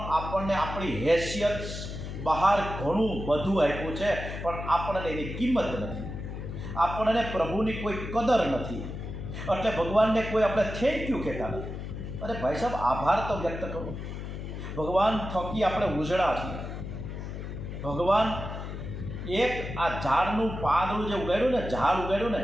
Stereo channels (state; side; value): noise; left; hum, 7 dB below the sound